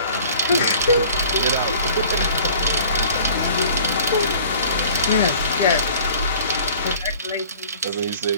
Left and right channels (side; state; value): both; inverted; correlation -0.49